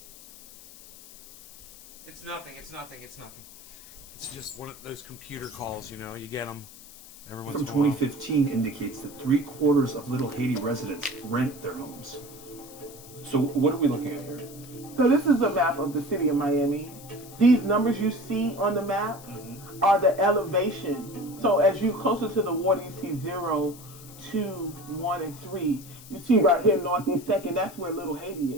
it's nothing. It's nothing. It's just one of those computer calls, you know, you get them. From 2015 indicates that 3/4 of Little Haiti residents rent their homes. So what are we looking at here? So this is a map of the city of Miami. These numbers you see on the map are the elevation. So as you closer to the water, you see 0, 2, 1, and 3. You see right here, Northeast 2nd, that's where Little Haiti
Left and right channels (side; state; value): left; noise; hiss, 18 dB below the sound